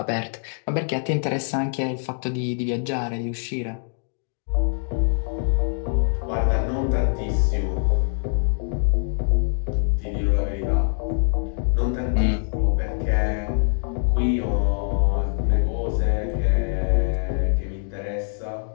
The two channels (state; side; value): silent; right; digital silence